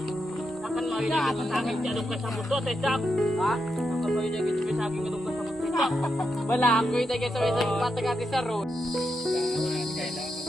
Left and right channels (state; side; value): normal; both; correlation 0.85